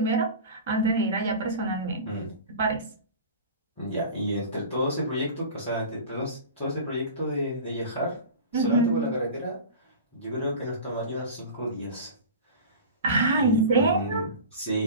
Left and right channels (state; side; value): inverted; both; correlation -0.34